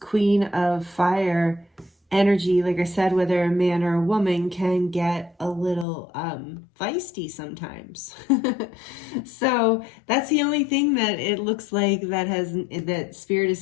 of Fire energy, like I said, whether a man or a woman, can get a little feisty sometimes. So that's the only thing that it looks like that Spirit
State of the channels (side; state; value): right; drops out; at 5.9 s